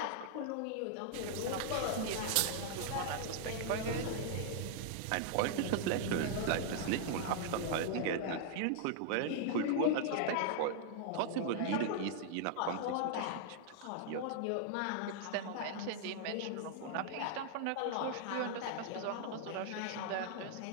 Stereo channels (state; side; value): different; both; correlation -0.01